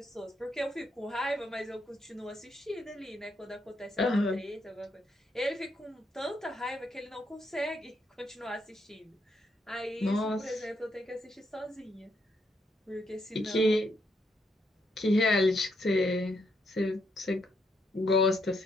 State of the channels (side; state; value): both; normal; correlation 0.76